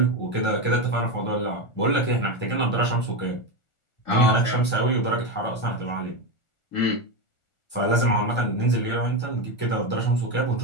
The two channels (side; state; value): right; late; 1.4 ms